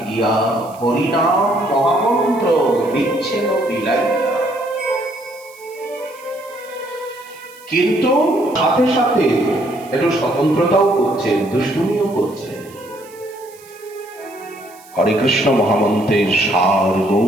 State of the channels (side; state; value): right; noise; hiss, 24 dB below the sound